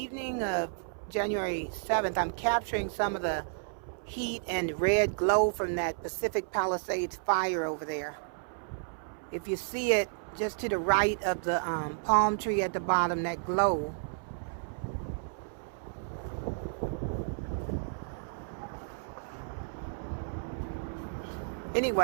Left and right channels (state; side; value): silent; left; 56 dB below the other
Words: of January 7th. I'm capturing some of the heat and red glow from that Pacific Palisades fire over there. If you see it just to the right of the palm tree at the bottom, that glow.